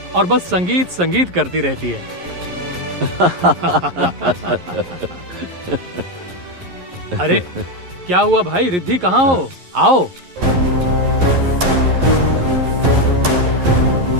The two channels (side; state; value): left; late; 11 ms